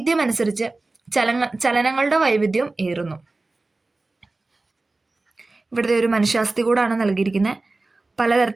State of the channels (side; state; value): left; quieter; 3.2 dB